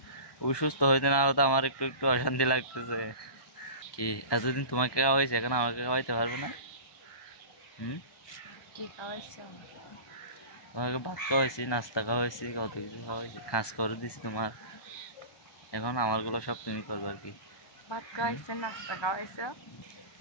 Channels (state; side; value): late; right; 1.2 ms